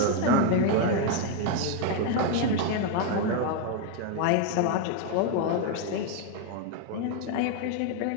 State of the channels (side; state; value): both; different; correlation 0.01